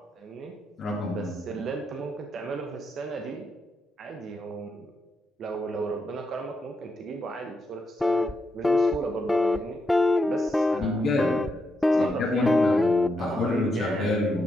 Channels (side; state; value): both; normal; correlation 0.82